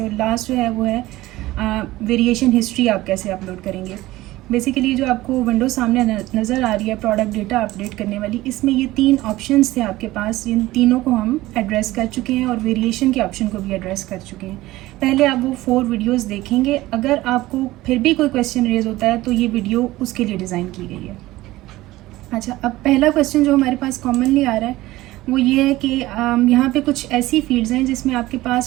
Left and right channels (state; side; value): quieter; left; 17.6 dB